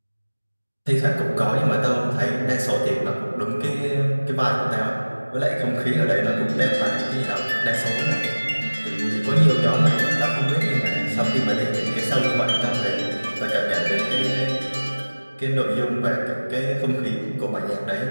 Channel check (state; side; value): inverted; both; correlation -1.00